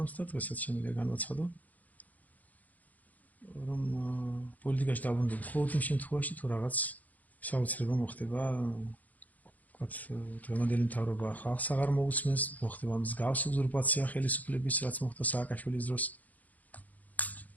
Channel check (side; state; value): right; late; 0.078 ms